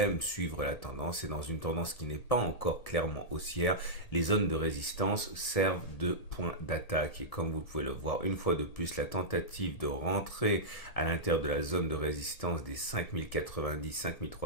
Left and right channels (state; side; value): late; right; 1.7 ms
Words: suivre la tendance et dans une tendance qui n'est pas encore clairement haussière, les zones de résistance servent de point d'attaque. Et comme vous pouvez le voir, une fois de plus, la tentative de rentrer à l'intérieur de la zone de résistance des